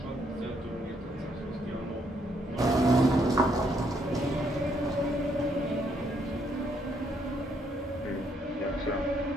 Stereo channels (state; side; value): normal; both; correlation 0.72